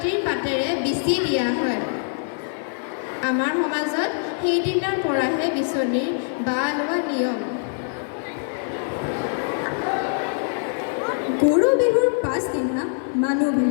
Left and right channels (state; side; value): silent; right; 63 dB below the other